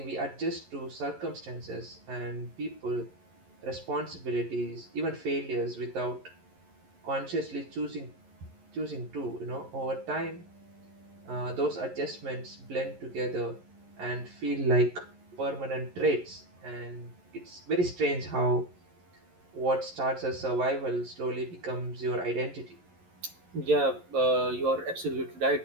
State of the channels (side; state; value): left; late; 11 ms